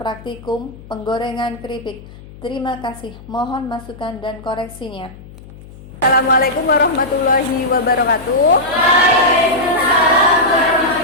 penggorengan keripik. Terima kasih, mohon masukan dan koreksinya. Assalamualaikum warahmatullahi wabarakatuh. Waalaikumsalam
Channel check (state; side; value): noise; left; hum, 19 dB below the sound